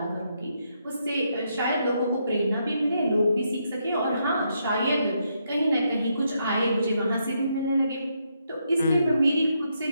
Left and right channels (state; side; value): inverted; both; correlation -0.78